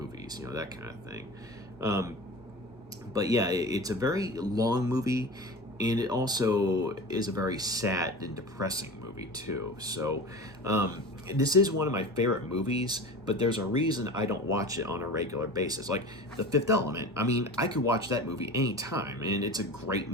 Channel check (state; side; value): normal; both; correlation 0.33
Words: that kind of thing. But yeah, it's a very long movie, and it also is a very sad and depressing movie too. So this is one of my favorite movies, but there's a reason I don't watch it on a regular basis. Like The Fifth Element, I mean, I could watch that movie anytime, and it's a great